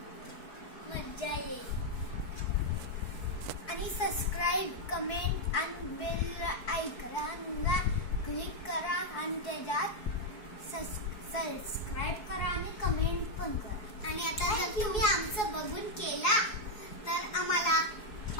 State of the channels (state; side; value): late; right; 4.7 ms